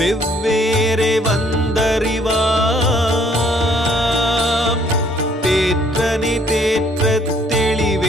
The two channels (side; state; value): both; normal; correlation 0.63